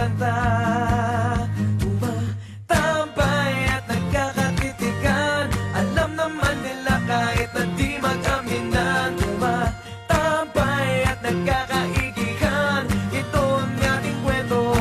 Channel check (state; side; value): identical; both; correlation 1.00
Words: Kahit na di mag-aminan, tumatambay at nagkakaigihan. Ito ang ating kwento,